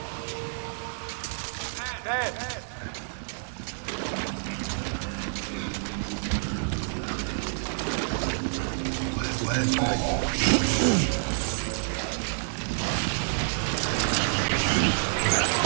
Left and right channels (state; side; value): silent; left; 59 dB below the other